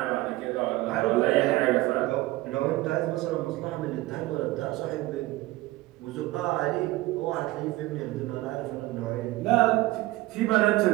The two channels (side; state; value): left; quieter; 18.8 dB